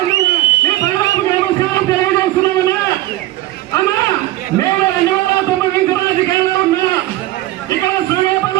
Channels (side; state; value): left; quieter; 16.1 dB